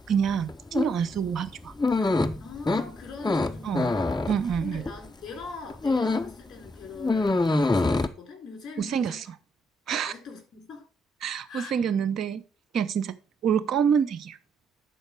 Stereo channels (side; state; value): both; normal; correlation 0.76